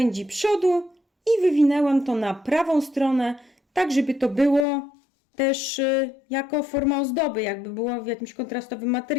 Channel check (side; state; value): right; drops out; at 4.7 s